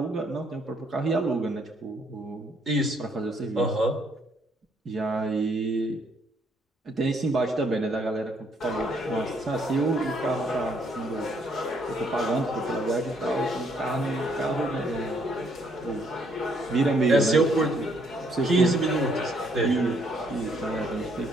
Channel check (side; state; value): both; normal; correlation 0.68